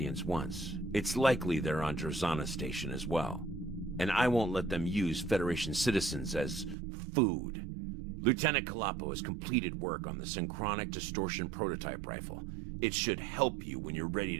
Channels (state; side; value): drops out; left; at 6.8 s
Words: once. It's likely they're on Drazana Station as well. And I won't let them use Federation citizens as food. Lieutenant Kalapo has completed work on the synchronic distortion prototype rifle. It should help you when you're ready